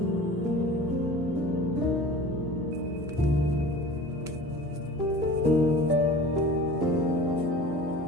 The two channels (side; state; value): both; normal; correlation 0.40